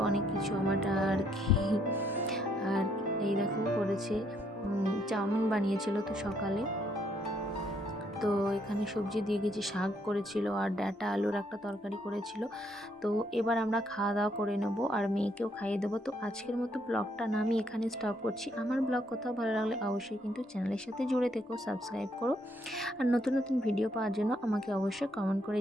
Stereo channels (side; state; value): both; normal; correlation 0.71